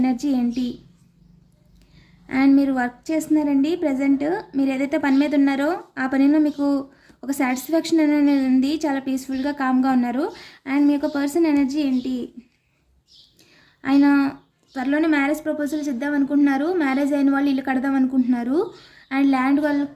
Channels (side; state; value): both; identical; correlation 1.00